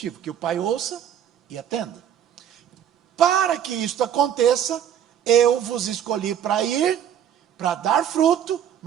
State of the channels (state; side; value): quieter; left; 9.7 dB